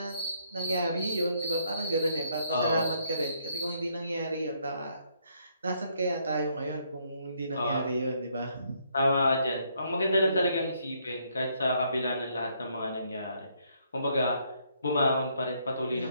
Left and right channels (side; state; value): both; inverted; correlation -0.71